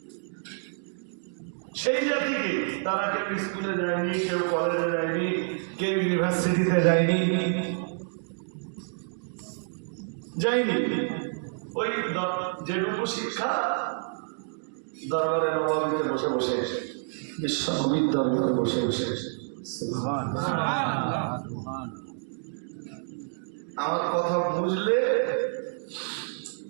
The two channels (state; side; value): silent; left; digital silence